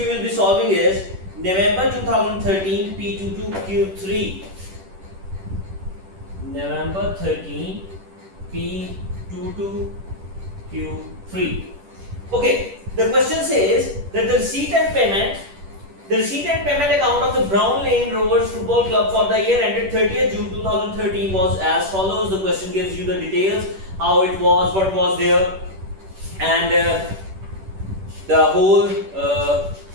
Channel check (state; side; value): late; left; 10 ms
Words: will be solving is November 2013 P22Q3. November 13 P22Q3. Okay, the question says that the receipt and payment account of the Brown Lane Rovers Football Club for the year ended 30th June 2013 was as follows. The question gives you the details, how it was, what was there, and the whole